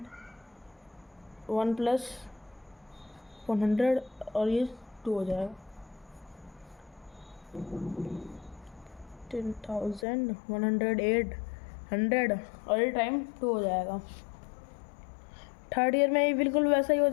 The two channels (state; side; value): drops out; right; at 10.1 s